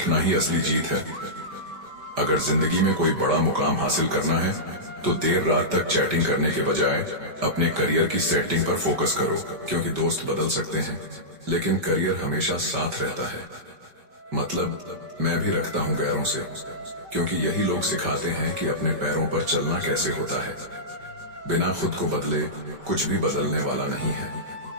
ही असली जीत है। अगर जिंदगी में कोई बड़ा मुकाम हासिल करना है तो देर रात तक चैटिंग करने के बजाय अपने करियर की सेटिंग पर फोकस करो, क्योंकि दोस्त बदल सकते हैं लेकिन करियर हमेशा साथ रहता है। मतलब मैं भी रखता हूं गैरों से, क्योंकि यही लोग सिखाते हैं कि अपने पैरों पर चलना कैसे होता है। बिना खुद को बदले कुछ भी बदलने वाला नहीं है।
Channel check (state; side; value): late; left; 5.1 ms